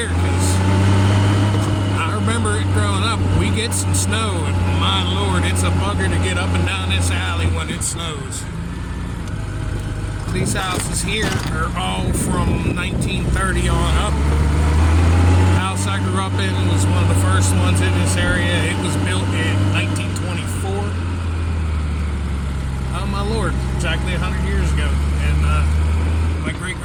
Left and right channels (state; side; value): identical; both; correlation 1.00